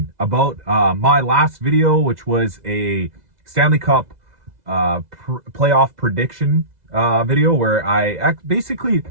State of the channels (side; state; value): left; late; 2.0 ms